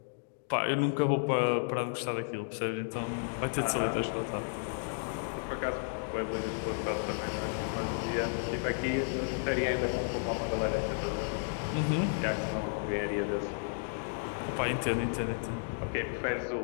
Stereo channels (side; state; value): right; silent; digital silence